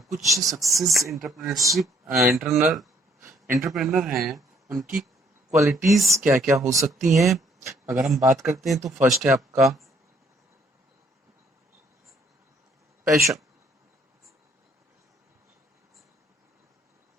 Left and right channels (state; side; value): normal; both; correlation 0.65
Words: कुछ success entrepreneurship entrepreneur हैं, उनकी qualities क्या क्या हो सकती हैं। अगर हम बात करते हैं तो फर्स्ट है आपका पैशन।